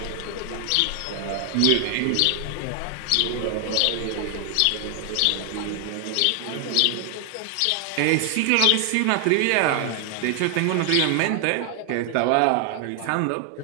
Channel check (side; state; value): both; different; correlation 0.00